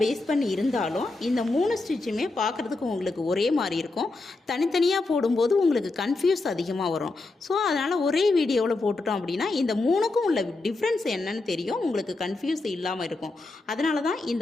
பேஸ் பண்ணி இருந்தாலும் இந்த 3 ஸ்டிச்சுமே பார்க்குறதுக்கு உங்களுக்கு ஒரே மாதிரி இருக்கும். தனித்தனியாக போடும்போது உங்களுக்கு கன்ஃபியூஸ் அதிகமாக வரும். ஸோ அதனால் ஒரே வீடியோவில் போட்டுட்டோம் அப்படின்னா இந்த 3க்கும் உள்ள டிஃப்ரென்ஸ் என்னன்னு தெரியும், உங்களுக்கு கன்ஃபியூஸ் இல்லாமல் இருக்கும். அதனால தான்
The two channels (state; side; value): quieter; right; 3.3 dB